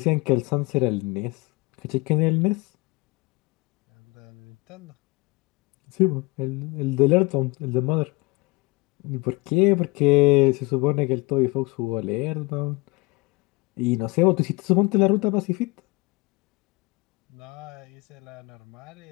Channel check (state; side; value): quieter; right; 24.8 dB